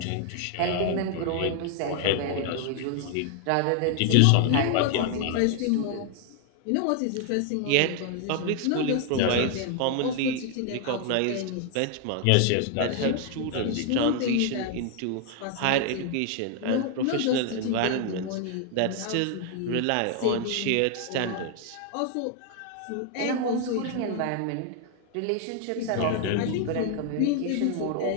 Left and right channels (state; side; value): different; both; correlation 0.00